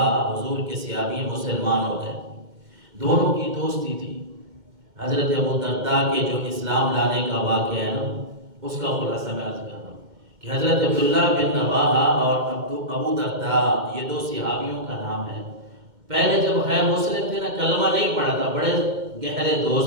حضور کے صحابی ہیں، مسلمان ہو گئے، دونوں کی دوستی تھی۔ حضرت ابو درداء کے جو اسلام لانے کا واقعہ ہے نا، اس کا خلاصہ میں عرض کر رہا ہوں کہ حضرت عبداللہ بن رواحہ اور ابو درداء یہ دو صحابیوں کا نام ہے۔ پہلے جب غیر مسلم تھے نا، کلمہ نہیں پڑھا تھا، بڑے گہرے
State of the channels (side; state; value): left; late; 2.1 ms